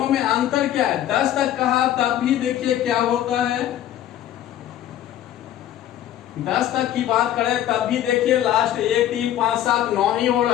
में अंतर क्या है। 10 तक कहा तब भी देखिए क्या होता है। 10 तक की बात करें तब भी देखिए लास्ट 1, 3, 5, 7, 9 ही हो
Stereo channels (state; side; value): quieter; right; 12.0 dB